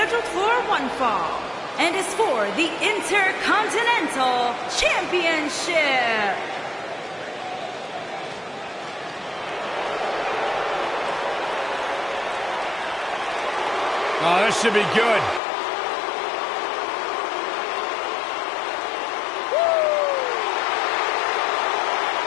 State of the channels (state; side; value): drops out; right; at 15.4 s